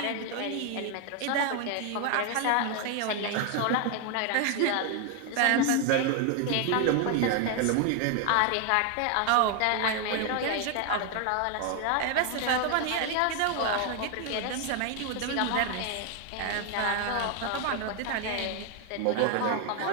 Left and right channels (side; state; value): both; different; correlation 0.01